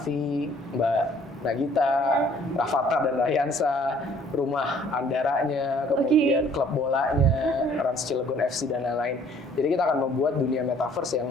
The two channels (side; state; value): both; normal; correlation 0.57